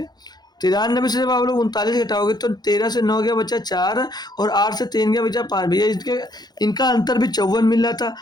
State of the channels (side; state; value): right; late; 0.20 ms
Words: 93 से जब आप लोग 39 घटाओगे तो 13 से 9 गया बचा 4 और 8 से 3 गया बचा 5 भैया, इसके इनका अंतर भी 54 मिल रहा था।